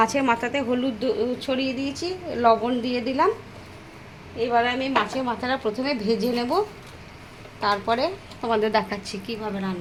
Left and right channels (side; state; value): both; identical; correlation 1.00